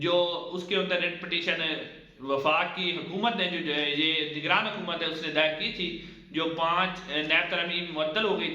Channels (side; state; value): both; identical; correlation 1.00